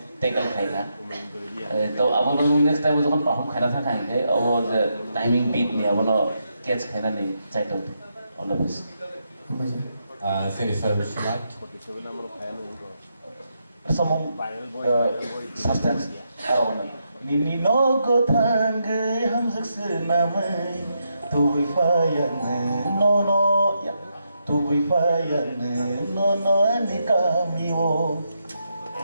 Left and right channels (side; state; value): both; inverted; correlation -0.82